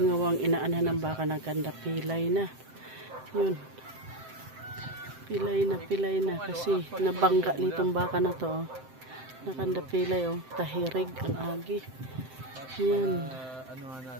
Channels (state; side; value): late; left; 7.7 ms